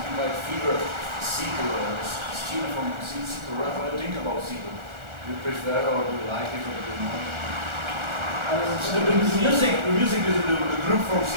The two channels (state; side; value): late; left; 1.4 ms